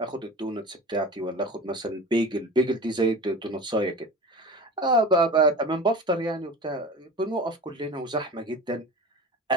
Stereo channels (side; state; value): both; normal; correlation 0.35